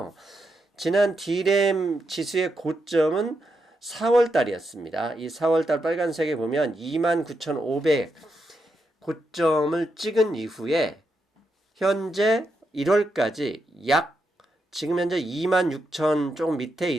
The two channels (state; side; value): normal; both; correlation 0.83